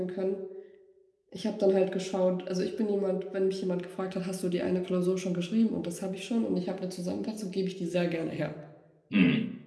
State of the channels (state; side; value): identical; both; correlation 1.00